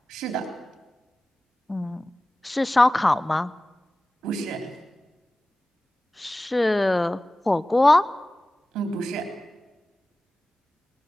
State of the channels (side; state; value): both; normal; correlation 0.96